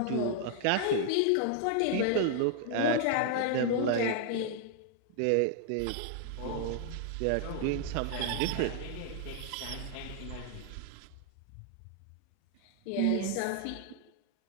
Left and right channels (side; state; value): both; different; correlation 0.00